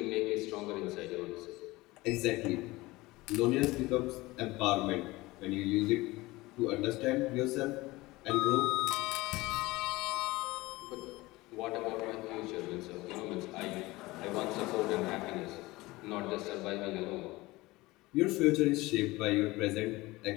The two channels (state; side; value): quieter; right; 20.5 dB